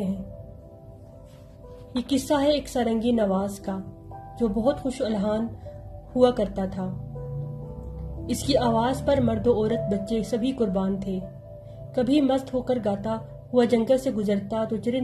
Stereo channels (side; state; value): both; identical; correlation 1.00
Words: ہیں۔ یہ قصہ ہے ایک سارنگی نواز کا جو بہت خوش الحان ہوا کرتا تھا۔ اس کی آواز پر مرد و عورت بچے سبھی قربان تھے۔ کبھی مست ہو کر گاتا ہوا جنگل سے گزرتا تو